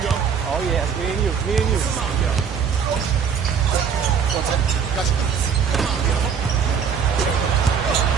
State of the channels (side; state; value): left; quieter; 6.9 dB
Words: Oh, yeah. Me and you. Me and you. Gotcha.